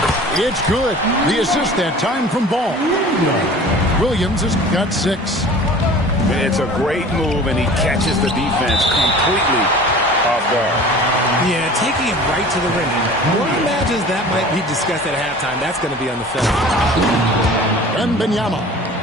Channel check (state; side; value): normal; both; correlation 0.43